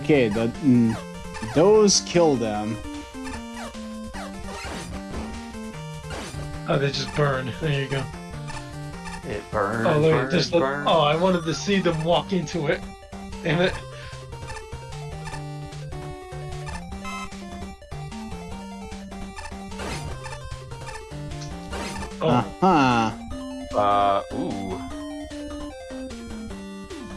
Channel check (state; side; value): identical; both; correlation 1.00